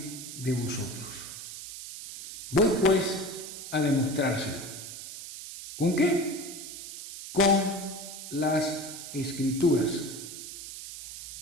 de vosotros. Voy pues a demostrárselo. ¿Con qué? Con las escrituras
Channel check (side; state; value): right; noise; hiss, 10 dB below the sound